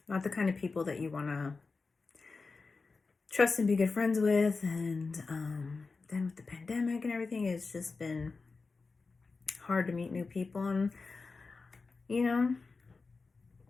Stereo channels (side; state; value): right; quieter; 4.2 dB